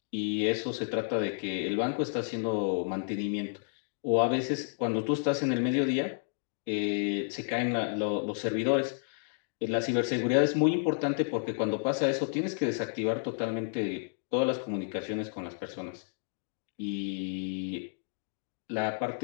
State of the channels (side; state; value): right; silent; digital silence